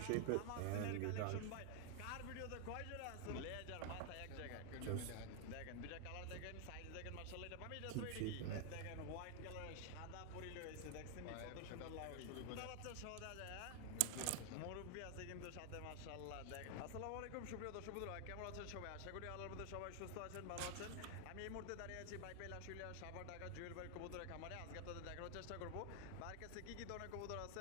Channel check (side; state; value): both; different; correlation 0.00